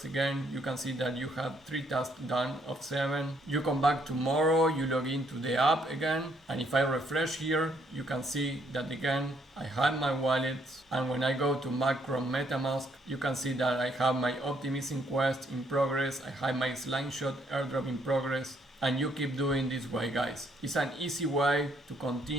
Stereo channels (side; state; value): both; normal; correlation 0.70